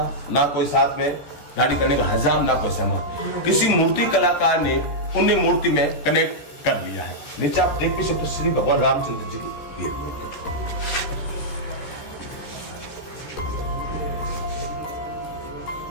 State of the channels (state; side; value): late; right; 14 ms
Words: ना कोई साथ में दाढ़ी करने का हजाम, ना कोई सामान। किसी मूर्ति कलाकार ने उन्हें मूर्ति में कनेक्ट कर लिया है। नीचे आप देख भी सकते श्री भगवान रामचंद्र जी की रियल मूर्ति।